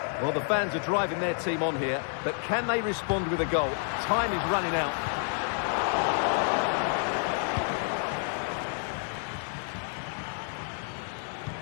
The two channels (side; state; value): right; silent; 55 dB below the other